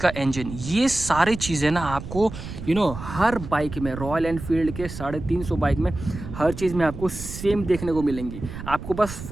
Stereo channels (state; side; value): noise; right; rumble, 10 dB below the sound